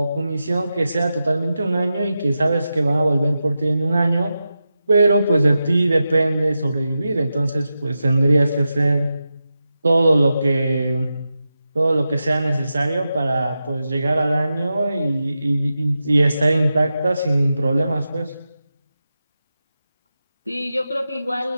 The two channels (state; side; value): inverted; both; correlation -0.91